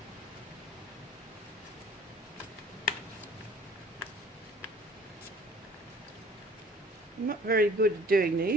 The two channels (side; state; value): both; normal; correlation 0.51